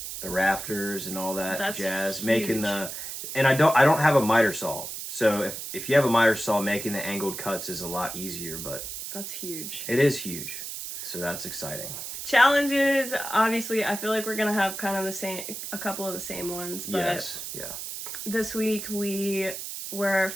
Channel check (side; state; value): right; noise; hiss, 7 dB below the sound